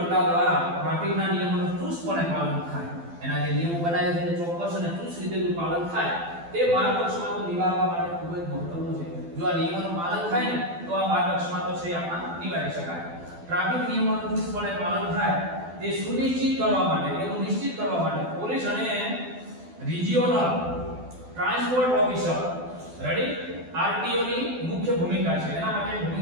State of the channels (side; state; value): left; late; 12 ms